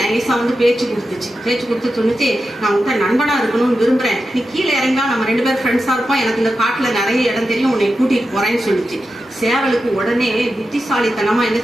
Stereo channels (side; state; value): both; normal; correlation 0.90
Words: நைஸா வந்து பேச்சு கொடுத்து சொன்னிச்சு, நான் உங்க நண்பனா இருக்கணும்னு விரும்புறேன், நீ கீழே இறங்கா நம்ம 2 பேரும் ஃப்ரெண்ட்ஸா இருப்போம், எனக்கு இந்த காட்டுல நிறைய இடம் தெரியும், உன்னை கூட்டிட்டு போறேன்னு சொல்லிச்சு. சேவலுக்கு உடனே புத்திசாலித்தனமா என்ன